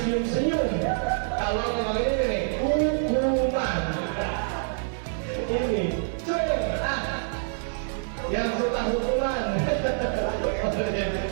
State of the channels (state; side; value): silent; left; digital silence